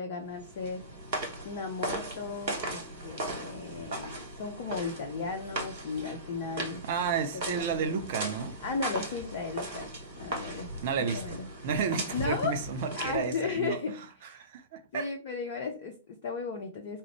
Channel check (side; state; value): both; inverted; correlation -0.32